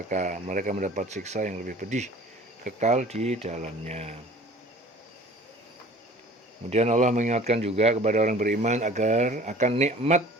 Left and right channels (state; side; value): normal; both; correlation 0.46